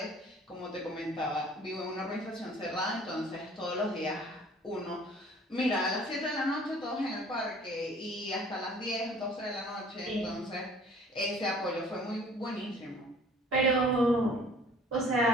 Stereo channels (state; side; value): normal; both; correlation 0.52